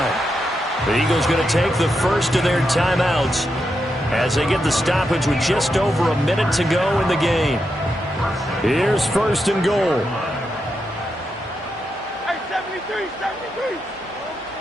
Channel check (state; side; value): normal; both; correlation 0.85